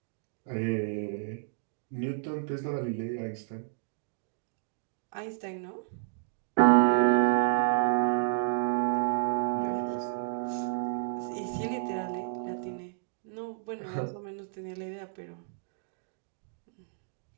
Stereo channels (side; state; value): left; silent; digital silence